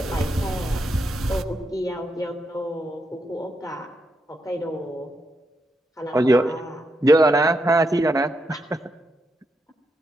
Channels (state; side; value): normal; both; correlation 0.82